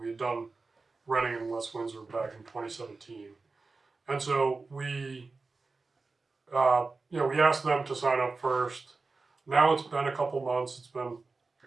had done Reading and West Windsor back in 2017. And so we asked them to sign up first. Now it's been a couple months. It's been,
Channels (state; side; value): quieter; left; 3.9 dB